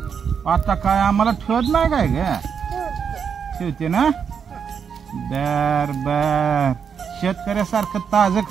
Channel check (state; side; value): quieter; left; 6.9 dB